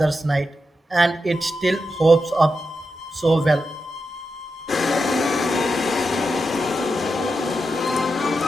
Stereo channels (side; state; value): both; normal; correlation 0.88